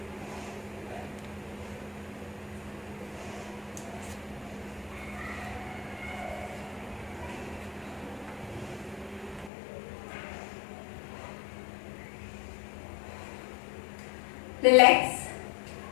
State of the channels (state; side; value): drops out; right; at 9.5 s